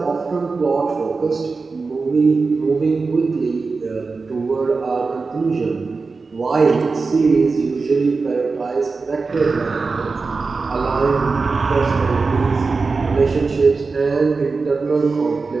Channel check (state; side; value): quieter; left; 4.2 dB